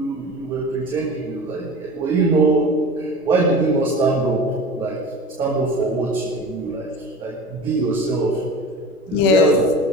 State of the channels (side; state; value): both; normal; correlation 0.36